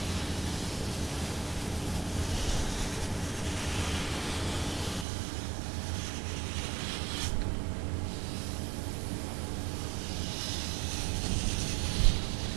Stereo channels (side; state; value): left; drops out; at 5.1 s